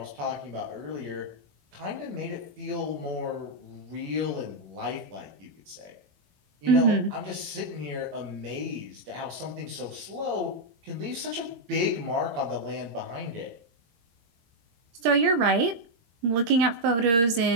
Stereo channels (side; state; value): left; late; 22 ms